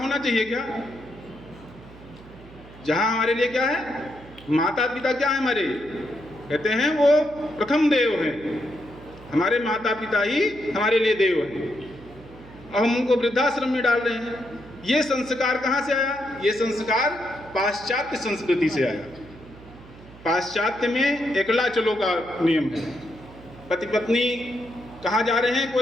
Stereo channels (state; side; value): noise; right; hum, 20 dB below the sound